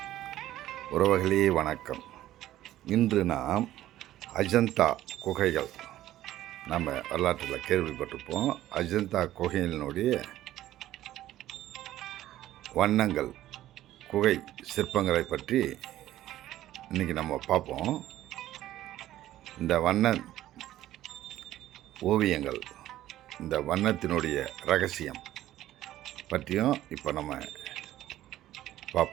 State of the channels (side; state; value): left; quieter; 13.9 dB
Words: உறவுகளே வணக்கம். இன்று நாம் அஜந்தா குகைகள், நம்ம வரலாற்றில் கேள்விப்பட்டிருப்போம். அஜந்தா குகைகளினுடைய வண்ணங்கள், குகை சிற்பங்களை பற்றி இன்றைக்கி நம்ம பார்ப்போம். இந்த வண்ண ஓவியங்கள், இந்த வண்ணத்தினுடைய ரகசியம் பற்றியும் இப்போ நம்ம